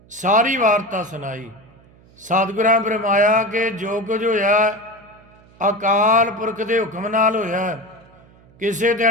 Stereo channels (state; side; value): noise; right; hum, 27 dB below the sound